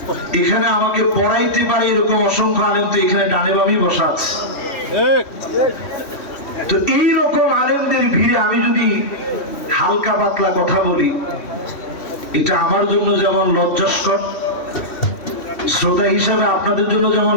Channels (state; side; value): late; right; 3.1 ms